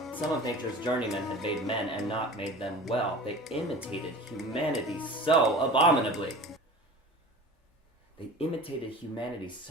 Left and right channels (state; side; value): normal; both; correlation 0.38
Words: some of nature's journeymen had made men and not made them well. They imitated humanity so abominably. They imitated humanity